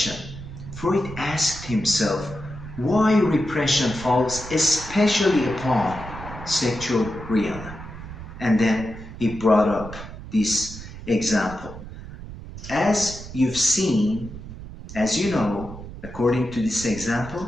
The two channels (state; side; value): noise; right; rumble, 12 dB below the sound